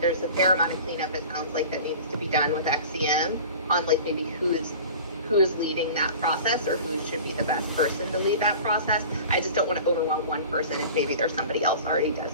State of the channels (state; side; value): inverted; both; correlation -0.39